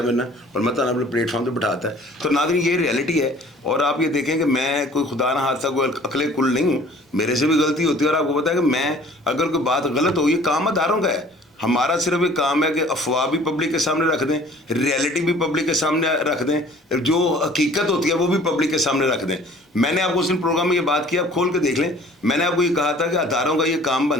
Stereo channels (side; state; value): both; normal; correlation 0.51